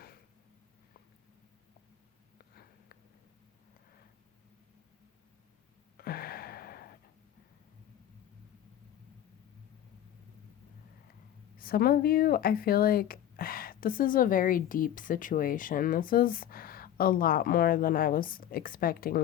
Some of you, I feel like this is a very deep situation. This is a lot more than I was expecting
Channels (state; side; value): quieter; right; 11.2 dB